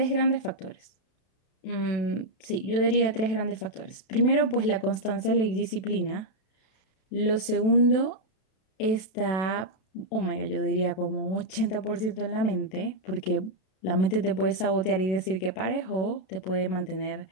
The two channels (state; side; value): late; right; 32 ms